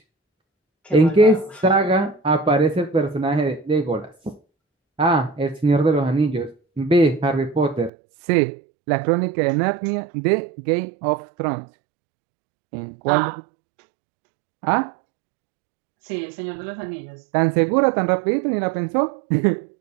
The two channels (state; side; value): drops out; left; at 7.9 s